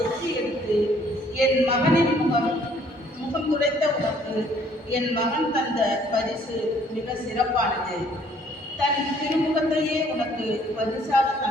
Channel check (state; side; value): normal; both; correlation 0.61